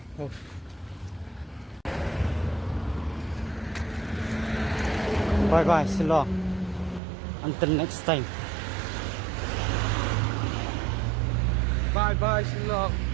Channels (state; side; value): drops out; left; at 7.0 s